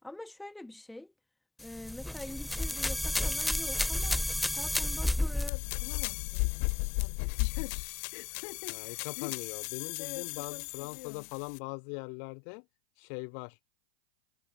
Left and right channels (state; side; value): drops out; right; at 5.5 s